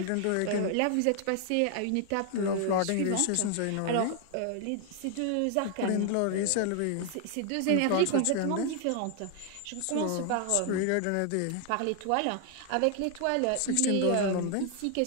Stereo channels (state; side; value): different; both; correlation 0.00